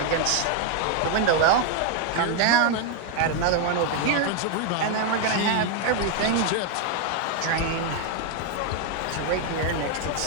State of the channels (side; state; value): both; different; correlation 0.01